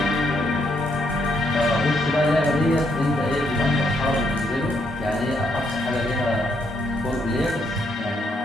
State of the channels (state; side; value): normal; both; correlation 0.75